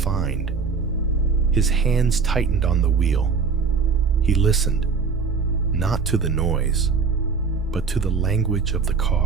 His hands tightened on the wheel. He listened, not to the noise, but to the language of the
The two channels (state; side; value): quieter; left; 5.2 dB